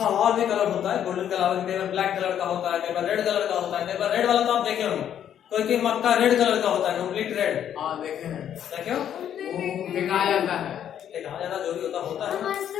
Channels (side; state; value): right; quieter; 9.8 dB